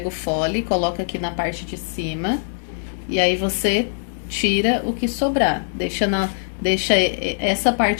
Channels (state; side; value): silent; right; digital silence